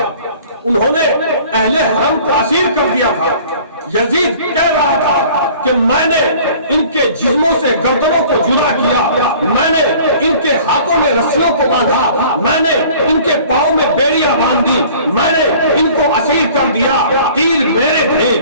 انہوں نے اہل حرم کو اسیر کر دیا تھا۔ یزید کہہ رہا تھا کہ میں نے ان کے جسموں سے گردنوں کو جدا کیا، میں نے ان کے ہاتھوں میں رسیوں کو باندھا، میں نے ان کے پاؤں میں بیڑیاں باندھ دی، میں نے ان کو اسیر کر دیا۔ تیر میرے تھے،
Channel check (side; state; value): both; inverted; correlation -0.49